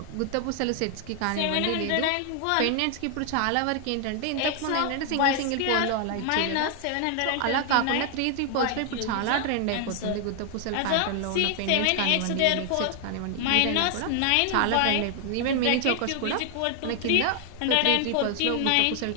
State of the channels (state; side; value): different; both; correlation 0.00